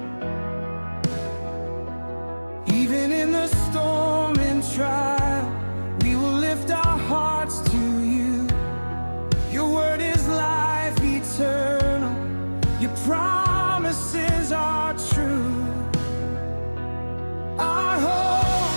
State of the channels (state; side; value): inverted; both; correlation -1.00